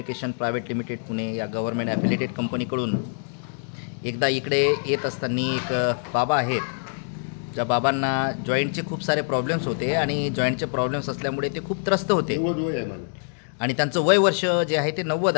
private limited Pune या गव्हर्नमेंट ॲफिलिएटेड कंपनीकडून एकदा इकडे येत असताना एक बाबा आहेत. ज्या बाबांना जॉईंटचे खूप सारे प्रॉब्लेम्स होते आणि जॉईंटचे प्रॉब्लेम्स असल्यामुळे ते खूप त्रस्त होते आणि त्यांचं वय वर्ष जे आहे ते 90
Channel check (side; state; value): right; silent; digital silence